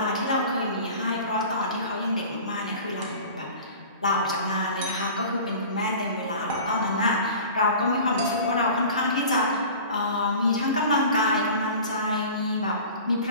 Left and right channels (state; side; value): inverted; both; correlation -0.40